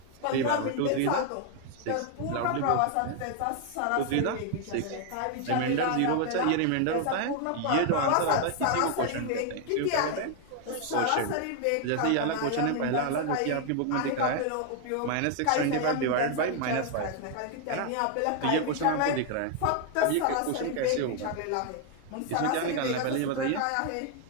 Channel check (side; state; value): both; different; correlation 0.00